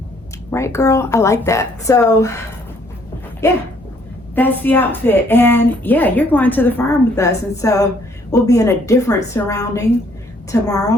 Right, girl? I like that. So yeah, that's the outfit. And yeah, you're going to the farm with us. And so we'll be in a different surrounding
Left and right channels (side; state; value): both; normal; correlation 0.65